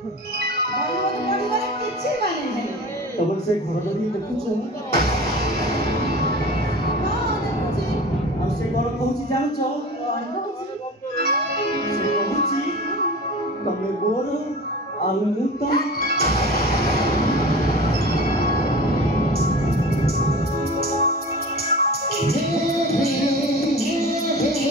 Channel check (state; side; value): normal; both; correlation 0.36